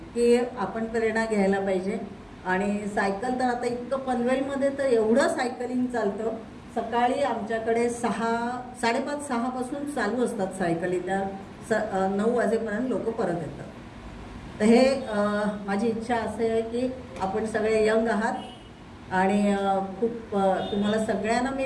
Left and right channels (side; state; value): both; identical; correlation 1.00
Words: की आपण प्रेरणा घ्यायला पाहिजे। आणि सायकल तर आता इतकं पनवेलमध्ये तर एवढं सायकलिंग चालतं, सकाळी आमच्याकडे 5:30-6 पासून चालू असतात सायकली, त्या 9 वाजेपर्यंत लोक परत येतात। तर हे माझी इच्छा असे आहे की आपण सगळे यंग आहात आणि खूप तुम्हाला सगळ्यांना